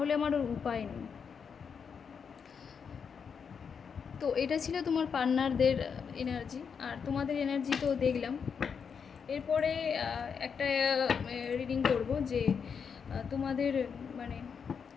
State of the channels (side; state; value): right; quieter; 6.5 dB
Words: আমার ওর উপায় নেই। তো এটা ছিল তোমার পার্টনারদের এনার্জি, আর তোমাদের এনার্জি তো দেখলাম। এরপরে একটা রিডিং করব যে তোমাদের মানে